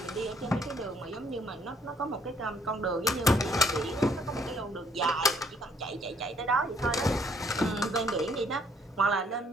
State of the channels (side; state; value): both; normal; correlation 0.65